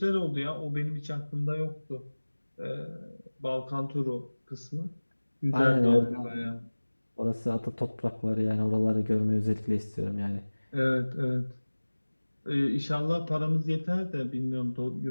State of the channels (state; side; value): inverted; both; correlation -1.00